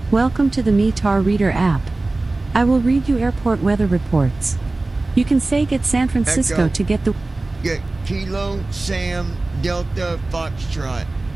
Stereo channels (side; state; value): left; quieter; 3.1 dB